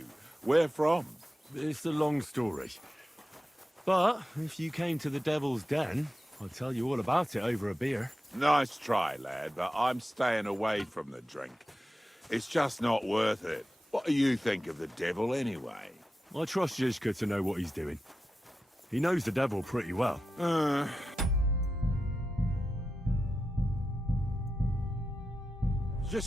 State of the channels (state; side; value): normal; both; correlation 0.91